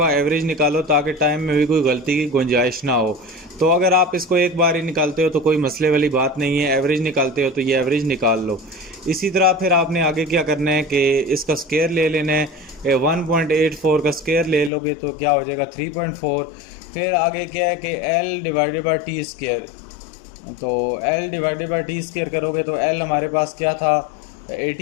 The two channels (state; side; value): drops out; right; at 14.7 s